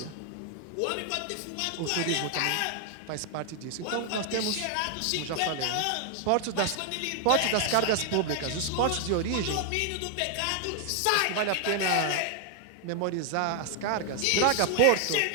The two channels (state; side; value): different; both; correlation 0.00